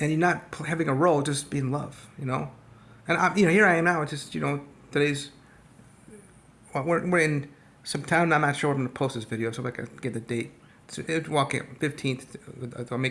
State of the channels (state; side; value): identical; both; correlation 1.00